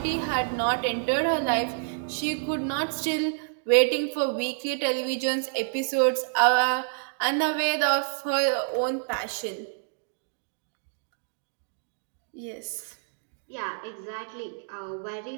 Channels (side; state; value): left; silent; digital silence